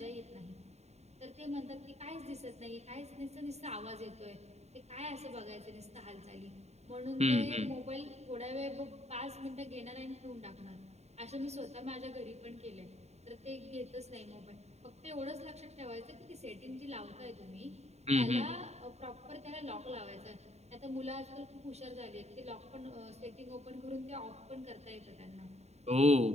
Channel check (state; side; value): late; left; 0.32 ms